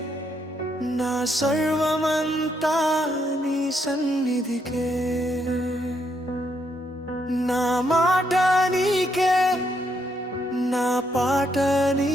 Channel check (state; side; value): normal; both; correlation 0.76